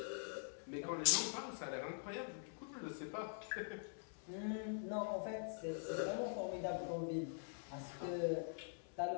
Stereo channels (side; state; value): right; silent; digital silence